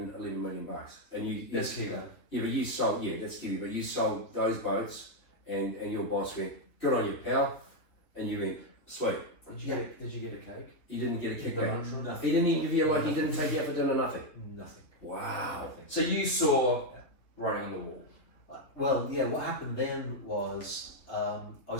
11 million bucks. And you That's Kiwi. Yeah, but you sold that's Kiwi, but you sold those boats and your boss went, good on you, pal, and you went, sweet. Did you get a cake? You didn't get a kickback. Nothing. He didn't even give you like he didn't take you out for dinner, nothing. Nothing. Wow. So you saw writing on the wall. Well, yeah, what happened then was I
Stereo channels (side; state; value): right; late; 3.7 ms